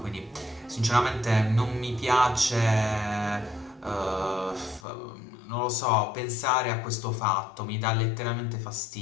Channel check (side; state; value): right; drops out; at 4.8 s